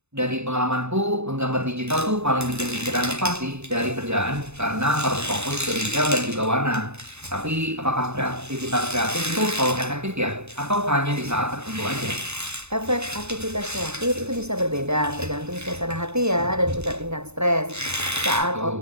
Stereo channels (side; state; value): left; late; 0.81 ms